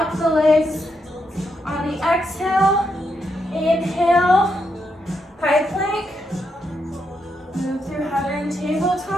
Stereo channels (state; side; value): normal; both; correlation 0.81